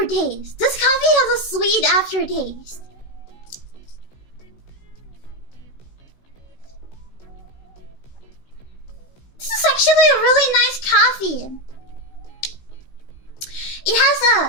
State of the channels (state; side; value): late; right; 16 ms